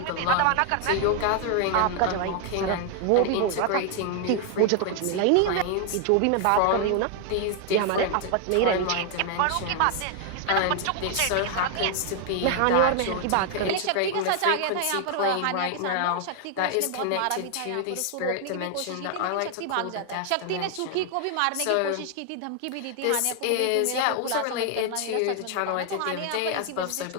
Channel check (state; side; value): different; both; correlation 0.00